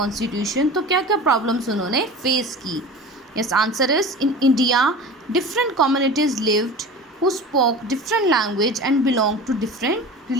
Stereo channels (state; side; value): normal; both; correlation 0.35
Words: तो क्या क्या प्रॉब्लम्स उन्होंने फेस की? Yes, answer is in India different communities lived who spoke different language and belong to different